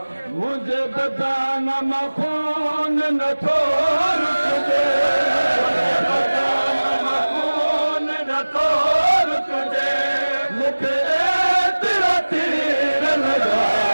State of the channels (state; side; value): inverted; both; correlation -1.00